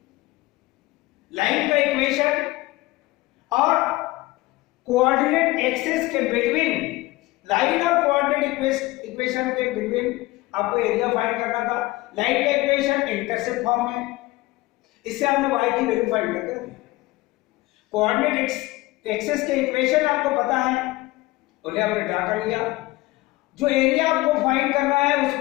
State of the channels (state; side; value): quieter; right; 19.8 dB